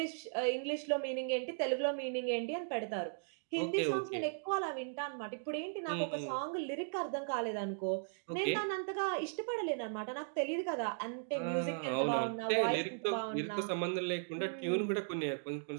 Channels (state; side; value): silent; left; digital silence